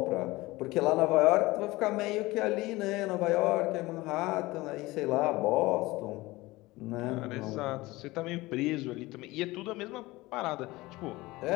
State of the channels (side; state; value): right; quieter; 20.2 dB